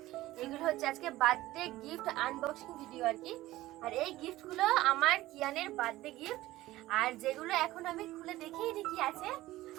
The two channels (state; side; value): quieter; left; 16.7 dB